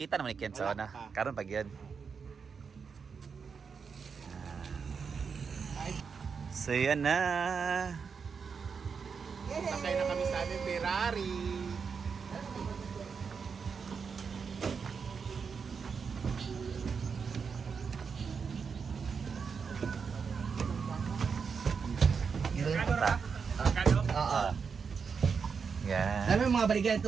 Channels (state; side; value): quieter; left; 5.8 dB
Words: naman ni Ken sa una. Karon pag yun. So yan na. Sakay na kami sa aming Ferrari. Oo. Yan. Alam mo mga baligan ito,